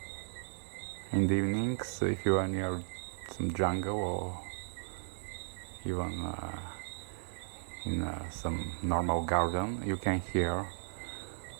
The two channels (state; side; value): silent; left; 54 dB below the other